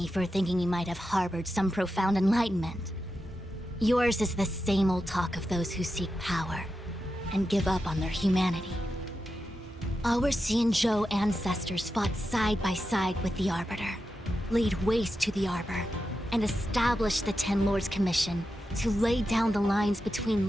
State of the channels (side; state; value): both; normal; correlation 0.89